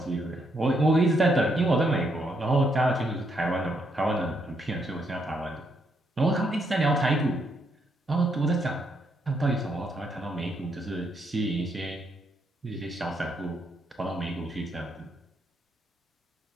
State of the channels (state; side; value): normal; both; correlation 0.76